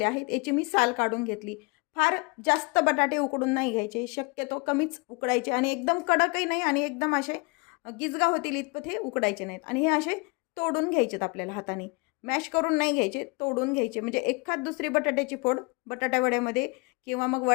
आहेत. याची मी साल काढून घेतली. फार जास्त बटाटे उकडून नाही घ्यायचे, शक्यतो कमीच उकडायचे आणि एकदम कडकही नाही आणि एकदम असे गिजगा होतील इतपत हे उकडायचे नाहीत. आणि हे असे तोडून घ्यायचेत आपल्याला हाताने. मॅश करून नाही घ्यायचे, तोडून घ्यायचे म्हणजे एखाद दुसरी बटाट्याची फोड बटाटा वड्यामध्ये किंवा मग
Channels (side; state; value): right; quieter; 29.0 dB